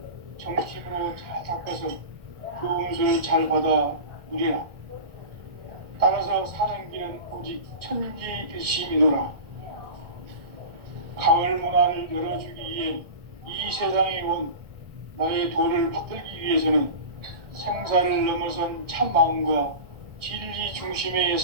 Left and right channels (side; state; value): left; late; 1.4 ms